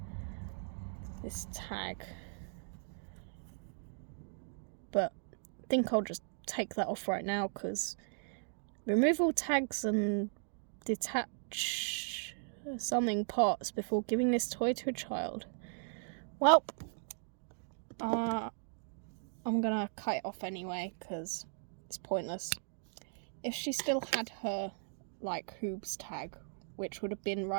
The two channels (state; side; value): silent; left; digital silence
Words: tag, but I think I'll just take that off right now because remove all tags and detach something parts before giving this toy to a child. Well, I'm gonna cut it off anyway because it's pointless. If she still had her like Hoobs tag, which would have been